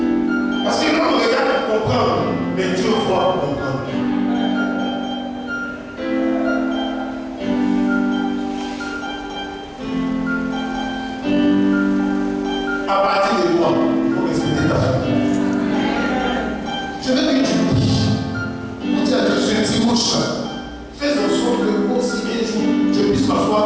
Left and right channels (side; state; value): both; identical; correlation 1.00